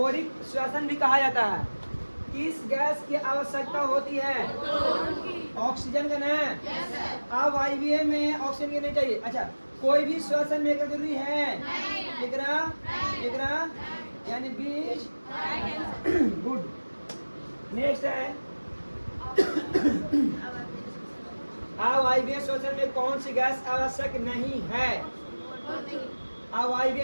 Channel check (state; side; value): inverted; both; correlation -1.00